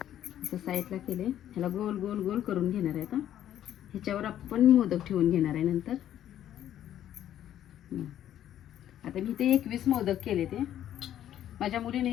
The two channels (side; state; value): right; quieter; 11.4 dB